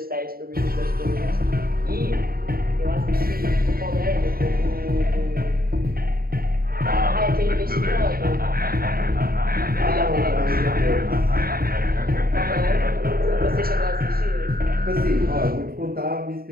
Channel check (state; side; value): late; left; 0.43 ms